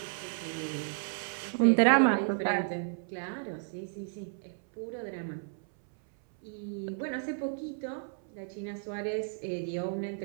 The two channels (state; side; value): silent; left; 56 dB below the other